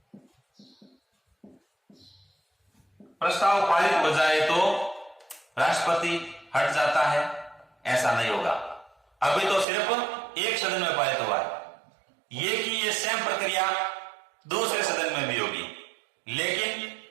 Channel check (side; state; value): left; drops out; at 9.7 s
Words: तो राष्ट्रपति हट जाता है, ऐसा नहीं होगा। अभी तो सिर्फ एक सदन में पारित हुआ है, ये सेम प्रक्रिया दूसरे सदन में भी होगी, लेकिन